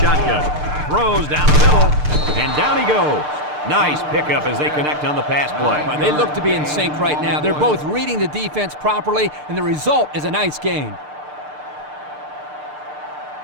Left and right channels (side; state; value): left; late; 6.7 ms